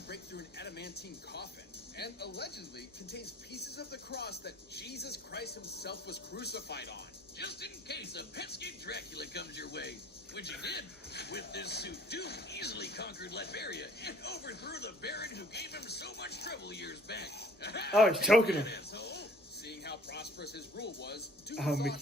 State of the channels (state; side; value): normal; both; correlation 0.53